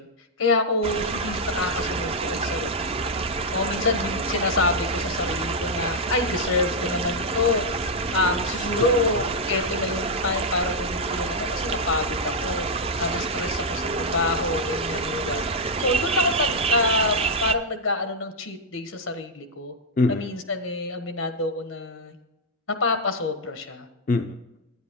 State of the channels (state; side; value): normal; both; correlation -0.02